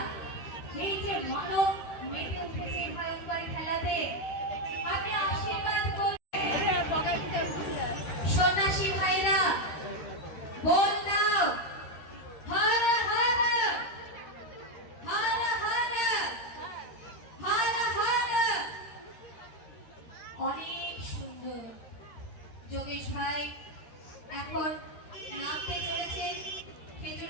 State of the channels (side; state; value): right; late; 13 ms